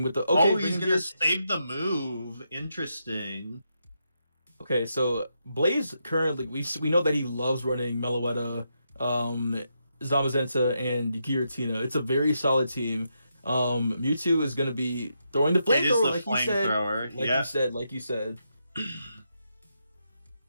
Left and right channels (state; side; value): inverted; both; correlation -0.82